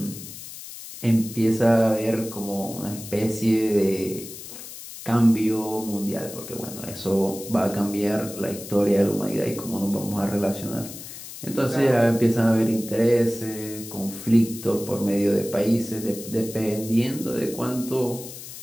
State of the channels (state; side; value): noise; left; hiss, 13 dB below the sound